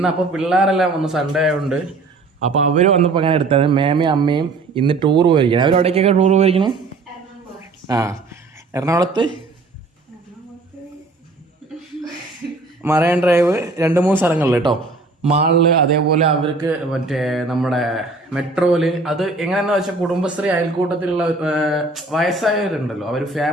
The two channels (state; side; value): quieter; left; 3.5 dB